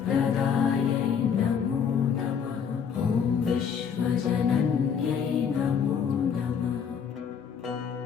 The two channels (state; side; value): quieter; right; 7.2 dB